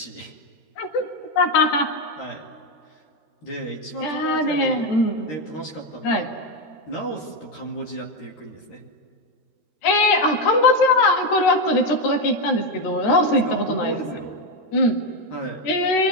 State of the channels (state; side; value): late; right; 13 ms